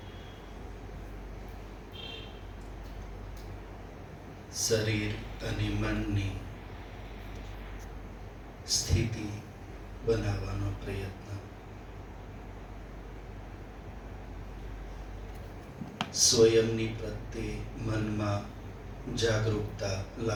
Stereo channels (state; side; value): identical; both; correlation 1.00